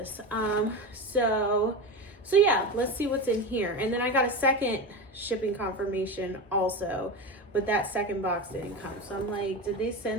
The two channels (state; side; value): normal; both; correlation 0.22